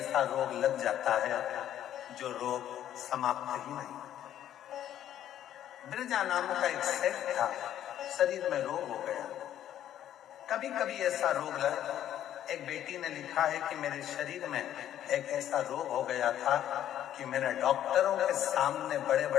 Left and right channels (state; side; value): quieter; right; 11.3 dB